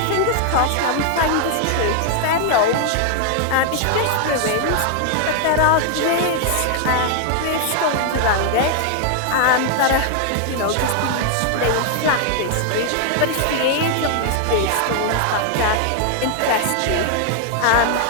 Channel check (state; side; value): different; both; correlation 0.00